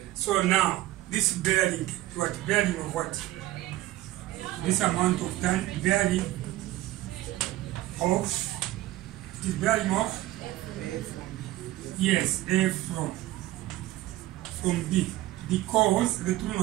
So now, this bearing, what? Bearing of what? This amount of time, bearing of, the bearing of? Yes, A from B. Because the true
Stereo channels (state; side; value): quieter; left; 16.0 dB